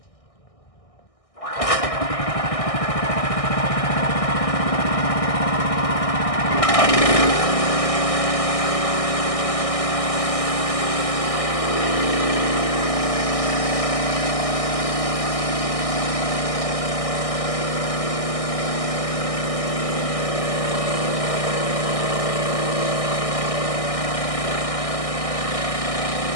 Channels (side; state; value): right; late; 1.6 ms